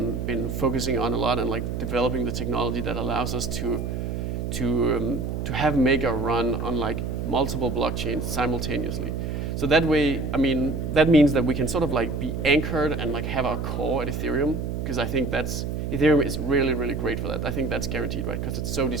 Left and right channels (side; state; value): right; noise; hum, 3 dB below the sound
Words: focusing on a lot, and like developing the technology that allows us to have Maker run on like multiple blockchains simultaneously. So that way, I mean, that means that we can sort of like be anchored and like have our core at Ethereum, because I think Ethereum is really, really great for that. I think that's guaranteed, right? Because it's so